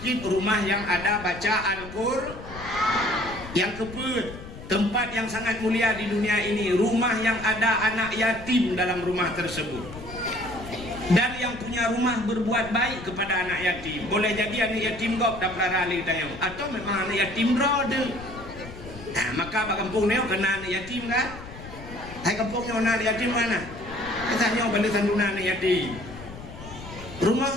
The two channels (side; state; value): left; noise; rumble, 14 dB below the sound